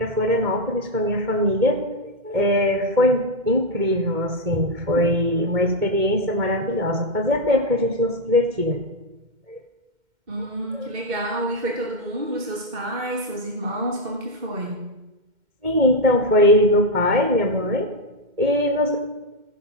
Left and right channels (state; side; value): late; left; 2.1 ms